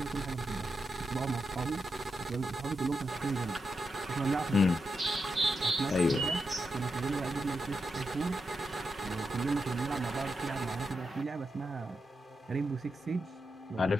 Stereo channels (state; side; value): normal; both; correlation 0.86